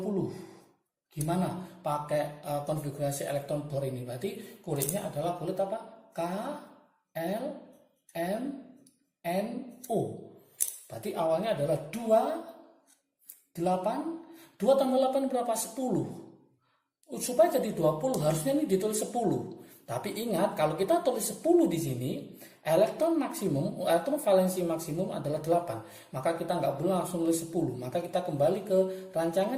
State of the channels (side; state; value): both; identical; correlation 1.00